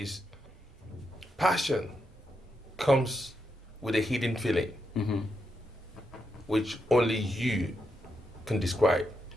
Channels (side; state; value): both; normal; correlation 0.83